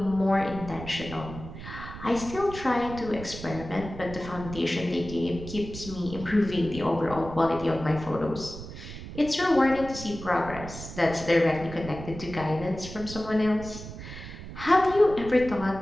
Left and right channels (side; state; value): right; noise; rumble, 11 dB below the sound